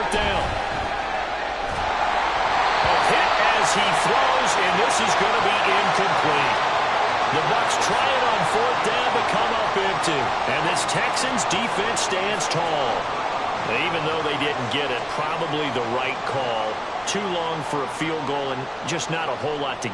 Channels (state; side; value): identical; both; correlation 1.00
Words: down. A hit as as he throws, and this is going to be incomplete. The Bucs try it on fourth down to come up empty. And this Texans defense stands tall. Even though they didn't get it, probably the right call. Too long for a field goal and just not a whole lot to